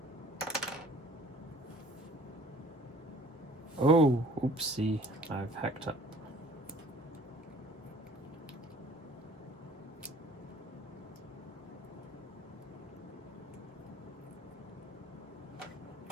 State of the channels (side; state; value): both; normal; correlation 0.52